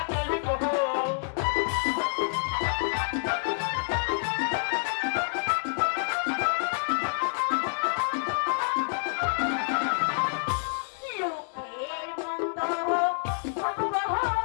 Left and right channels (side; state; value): right; silent; digital silence